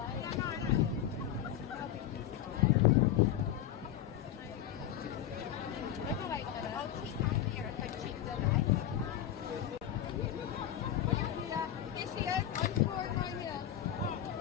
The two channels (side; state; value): right; quieter; 10.9 dB